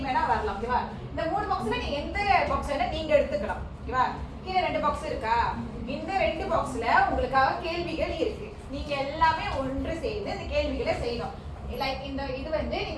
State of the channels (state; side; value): identical; both; correlation 1.00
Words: வேணா வரலாம். ஓகேவா? இந்த 3 பாக்ஸ்ல நீங்க எந்த பாக்ஸ் வேணா நீங்க எடுத்துக்கலாம். ஓகேவா? கீழே 2 பாக்ஸ் இருக்கா? இந்த 2 பாக்ஸ்ல உங்களுக்காக கேள்விகள் இருக்கு. நீங்க எல்லாமே ஒன்று சேர்ந்து இந்த கேள்விகளை செய்யணும். லைக் இந்த இது வந்து